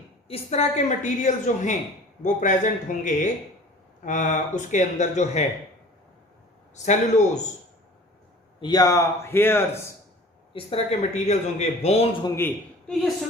इस तरह के मटेरियल जो हैं वो प्रेजेंट होंगे उसके अंदर जो है, सेलुलोज या हेयर्स, इस तरह के मटेरियल्स होंगे, बोन्स होंगी, तो ये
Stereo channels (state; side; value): normal; both; correlation 0.45